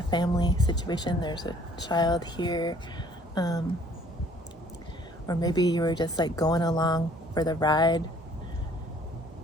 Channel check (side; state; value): both; normal; correlation 0.57